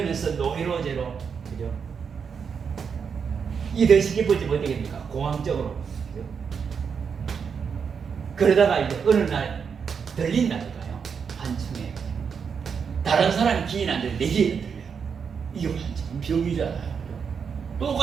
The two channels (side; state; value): left; quieter; 6.4 dB